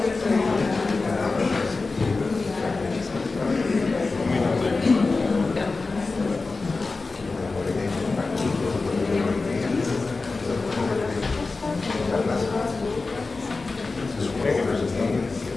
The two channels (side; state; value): right; quieter; 3.8 dB